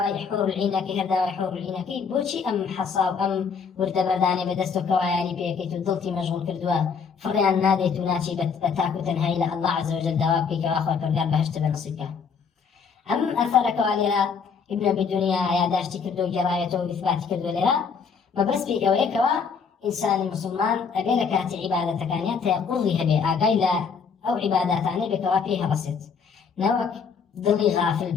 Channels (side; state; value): right; quieter; 5.9 dB